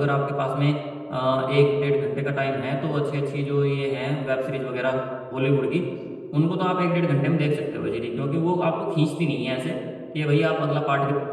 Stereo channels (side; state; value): both; identical; correlation 1.00